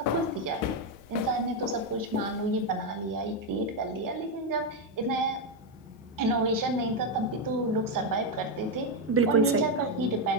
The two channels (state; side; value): normal; both; correlation 0.05